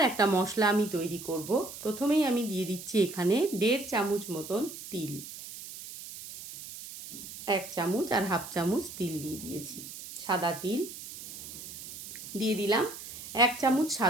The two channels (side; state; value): right; noise; hiss, 12 dB below the sound